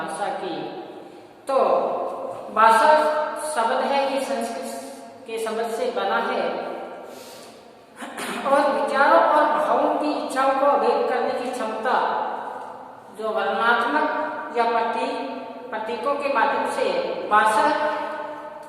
की तो भाषा शब्द है कि संस्कृत के शब्द से बना है और विचारों और भावों की इच्छाओं को व्यक्त करने की क्षमता जो वर्णनात्मक या प्रतीकों के माध्यम से भाषा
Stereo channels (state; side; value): identical; both; correlation 1.00